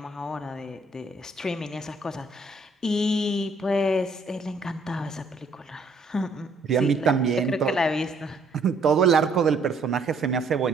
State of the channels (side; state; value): left; quieter; 3.1 dB